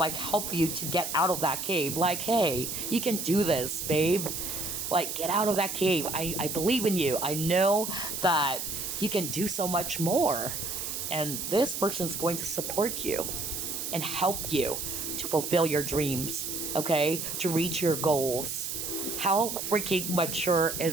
help you to get out of that cave. Like, hey, you can do this, babe. Like, get out of that cave. I believe in you. I know that you can do so much more. And this person's going to support you and help you to fulfill your dreams, okay? To reach your goals. How freaking mature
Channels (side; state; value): right; noise; hiss, 4 dB below the sound